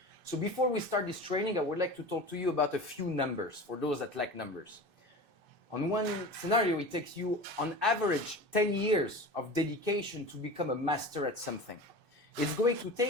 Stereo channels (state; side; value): late; left; 2.6 ms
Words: So before we start this training, I would like to talk to you about a few numbers for those that like numbers. On one scenario, it takes you, on average, 10 years of dedication to become a master at something. It's going to